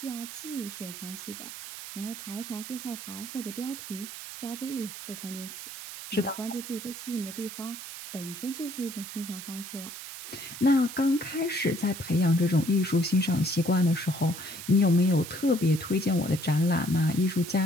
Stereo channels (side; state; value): right; noise; hiss, 10 dB below the sound